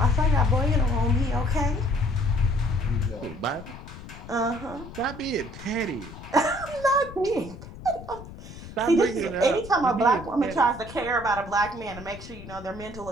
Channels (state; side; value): noise; left; rumble, 14 dB below the sound